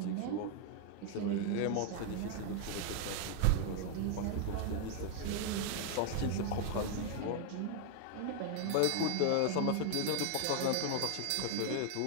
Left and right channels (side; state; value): both; different; correlation 0.00